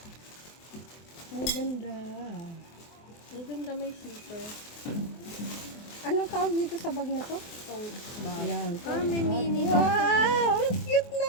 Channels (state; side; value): late; right; 24 ms